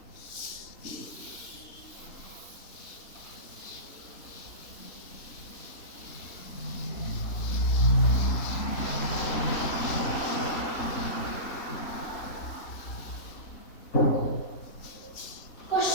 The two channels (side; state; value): right; late; 3.4 ms